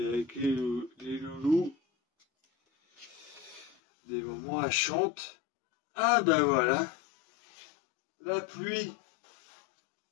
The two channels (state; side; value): drops out; right; at 3.8 s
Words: les loulous. Des moments elle chante. Ah ben voilà. La pluie.